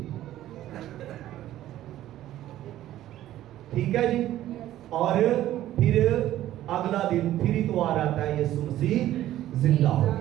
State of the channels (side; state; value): left; quieter; 13.5 dB